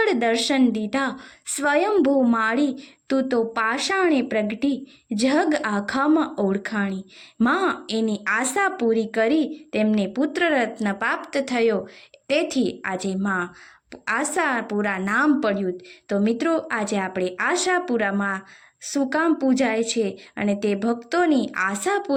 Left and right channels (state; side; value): identical; both; correlation 1.00